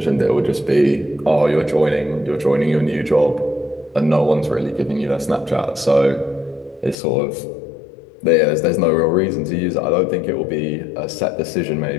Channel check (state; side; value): drops out; right; at 7.0 s